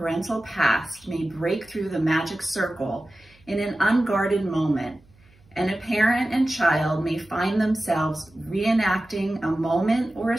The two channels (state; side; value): noise; right; hum, 30 dB below the sound